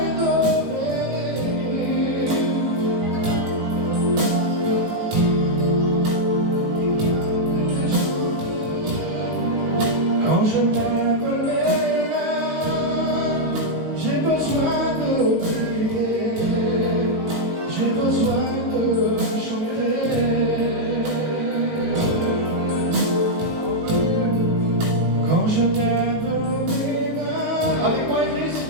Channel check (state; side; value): late; left; 19 ms